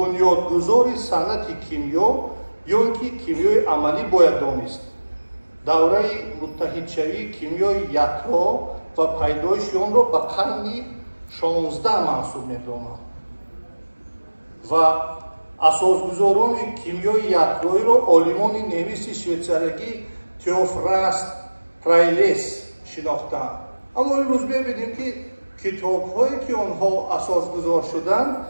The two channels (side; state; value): both; inverted; correlation -1.00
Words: صنعت کیمیا یا اینکه کیمیای عملی باید دانست. دوره متحدشوی کیمیای یکتا و پیدایش آن را به قرن 16 منسوب می‌دانند و اساسگزاران کیمیای یکتایی را عالمان نویس شویتزاری تئوفراست پرایلیس شناختند. اما امروز ببینیم که کتاب‌هایی که آنها اساسگذار شدند